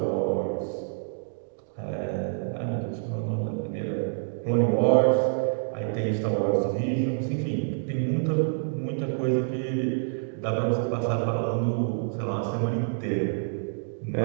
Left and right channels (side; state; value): left; silent; digital silence